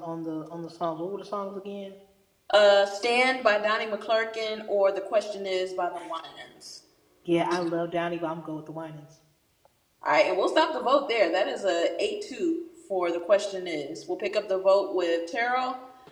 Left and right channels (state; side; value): identical; both; correlation 1.00